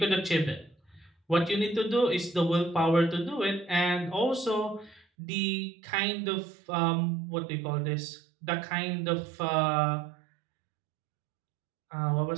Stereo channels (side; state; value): left; drops out; at 5.1 s